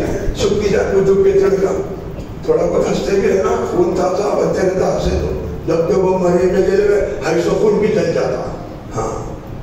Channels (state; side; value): identical; both; correlation 1.00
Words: سکتی جان کو جھک کے چڑھ گا، تھوڑا بہت ہنستے بھی رہنا خون تازہ بچے رہتا ہنسے تو جب کہ وہ مرے میں جلے ہوئے ہائی سو خون بھی چل جاتا، ہاں